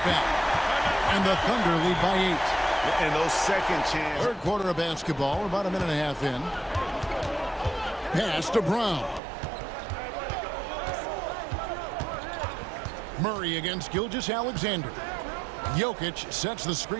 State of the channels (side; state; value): left; drops out; at 9.2 s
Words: And the Thunder lead by 8. And those second chance. Third quarter of basketball, we're about a minute and a half in. Pass to Brown. Murray against Gilgeous-Alexander. Jokic sets the